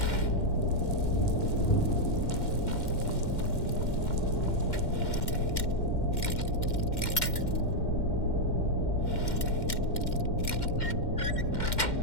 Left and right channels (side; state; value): right; late; 2.1 ms